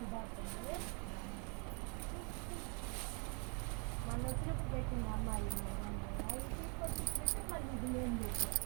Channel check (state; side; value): quieter; left; 34.9 dB